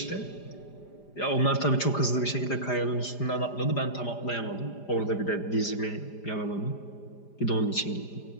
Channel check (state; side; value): late; right; 5.0 ms